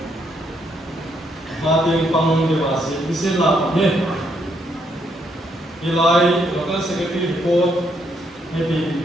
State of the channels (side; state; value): both; normal; correlation 0.74